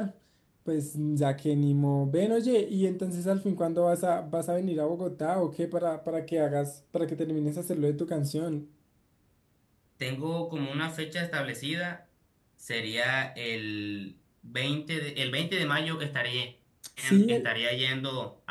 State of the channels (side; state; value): both; identical; correlation 1.00